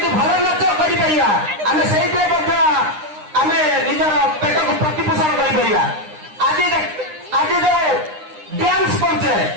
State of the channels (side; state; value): left; late; 9.8 ms